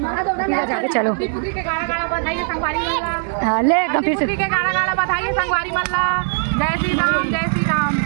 चलो हाँ ले एकदम फिर से बधाइए संगवारी मल्ला जय श्री राम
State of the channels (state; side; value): silent; left; digital silence